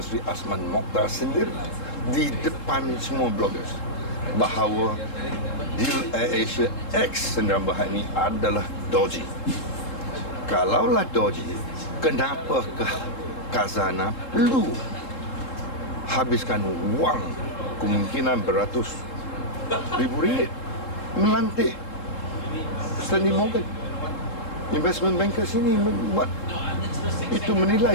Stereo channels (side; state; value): right; late; 3.7 ms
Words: Sri Azman Mokhtar sendiri di depan semua bloggers bahawa deal AirAsia X Sdn Bhd ini adalah dodgy. Kalaulah dodgy, kenapakah Khazanah perlu habiskan wang kemungkinan beratus ribu ringgit melantik Stanley Morgan Investment Bankers ini membuat itu menilai